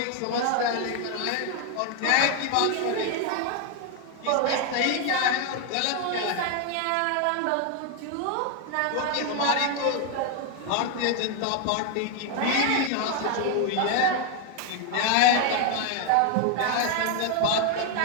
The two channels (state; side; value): different; both; correlation 0.01